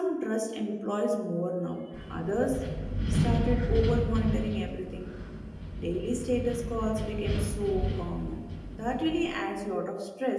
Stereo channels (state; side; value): identical; both; correlation 1.00